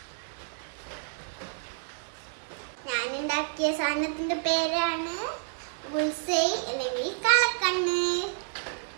ഞാനുണ്ടാക്കിയ സാധനത്തിന്റെ പേരാണ് ബുൾസൈ അല്ലെങ്കിൽ കളക്കണ്ണ്.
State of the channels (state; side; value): silent; left; digital silence